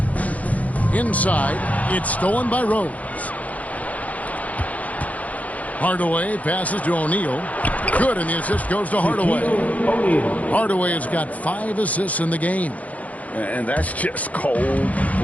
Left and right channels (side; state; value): right; late; 0.071 ms